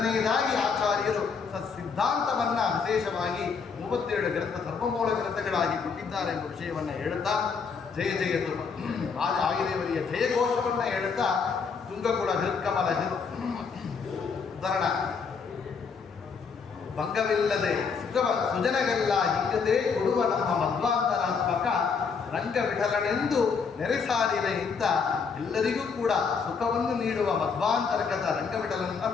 ಆಚಾರ್ಯರು ಸಿದ್ಧಾಂತವನ್ನ ವಿಶೇಷವಾಗಿ 37 ಗ್ರಂಥ ಸರ್ವಮೂಲ ಗ್ರಂಥಗಳಾಗಿ ಕೊಟ್ಟಿದ್ದಾರೆ ಎಂಬ ವಿಷಯವನ್ನು ಹೇಳುತ್ತಾ ಜಯ ಜಯತು ಆಯುದೇವರಿಯ ಜಯಘೋಷವನ್ನು ಹೇಳುತ್ತಾ ತುಂಗಕುಳ ಹೃತ್ಕಮಲ ಧರಣ ಭಂಗವಿಲ್ಲದೆ ಸುಜನಗೆಲ್ಲ ಹಿಗ್ಗದೆ ಕೊಡುವ ನಮ್ಮ ಮಧ್ವಾಂತರಾತ್ಮಕ ರಂಗ ವಿಠಲನೆಂದು ನೆರೆಸಾರಿದೆ ಅಂತ ಎಲ್ಲರಿಗೂ ಕೂಡ ಸುಖವನ್ನು ನೀಡುವ ಮಧ್ವಾಂತರ್ಗತ ರಂಗವಿಠಲನ್ನ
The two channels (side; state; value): right; quieter; 5.6 dB